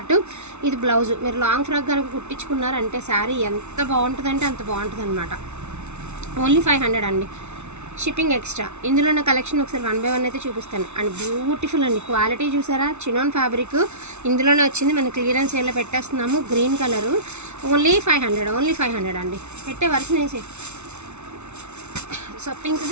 ఇది బ్లౌజ్. మీరు లాంగ్ ఫ్రాక్ కనుక కుట్టించుకున్నారంటే శారీ ఎంత బాగుంటుందంటే అంత బాగుంటుంది అనమాట. ఓన్లీ 500 అండి, షిప్పింగ్ ఎక్స్ట్రా. ఇందులో ఉన్న కలెక్షన్ ఒకసారి 1 by 1 అయితే చూపిస్తాను. అండ్ బ్యూటిఫుల్ అండి, క్వాలిటీ చూసారా, చినాన్ ఫ్యాబ్రిక్ ఇందులోనే వచ్చింది. మన క్లియరెన్స్ సేల్లో పెట్టేస్తున్నాము. గ్రీన్ కలరు ఓన్లీ 500, ఓన్లీ 500 అండి. పెట్టే వర్షన్ వేసి. సో పింక్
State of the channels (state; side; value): late; left; 0.82 ms